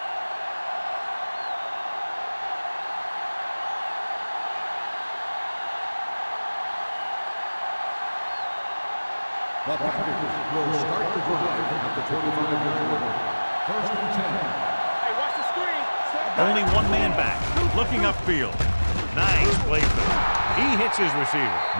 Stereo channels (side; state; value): both; inverted; correlation -1.00